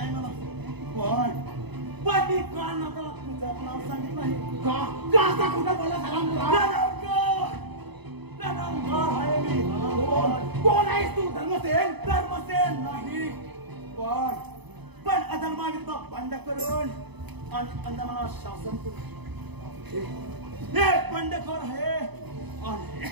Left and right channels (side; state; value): left; late; 0.99 ms